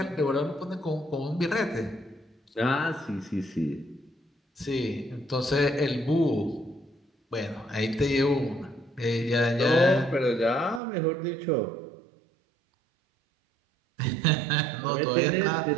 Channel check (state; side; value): drops out; left; at 10.8 s